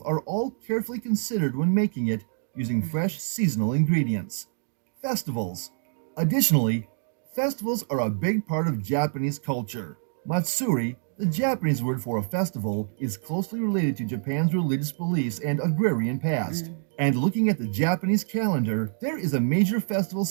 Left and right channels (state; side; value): silent; left; 61 dB below the other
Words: are all carefully considered when making it using fresh seasonal ingredients. Festivals. Additionally, festivals are a big part of Japanese culture. Matsuri, the Japanese word for a festival, is closely related to Japan's religious beliefs and agrarian past. And looking at the Japanese calendar, there is a major festival